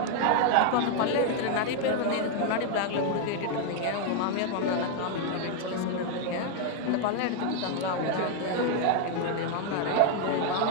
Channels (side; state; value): both; different; correlation 0.00